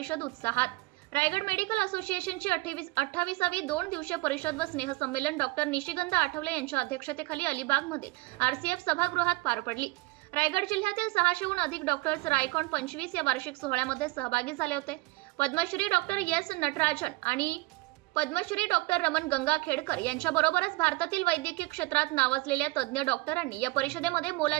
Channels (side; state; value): left; quieter; 22.6 dB